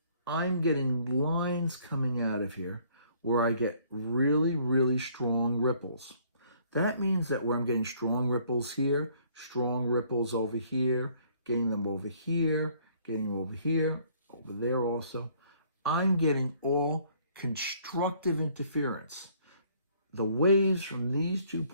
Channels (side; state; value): both; inverted; correlation -0.61